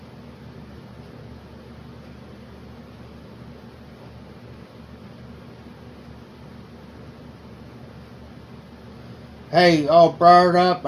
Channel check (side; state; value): both; identical; correlation 1.00